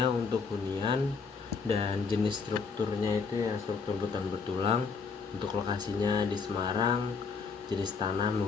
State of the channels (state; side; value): quieter; right; 5.2 dB